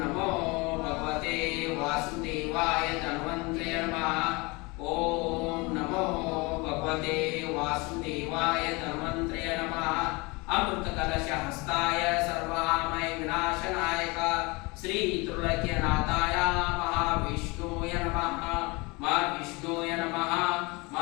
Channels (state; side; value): quieter; right; 26.2 dB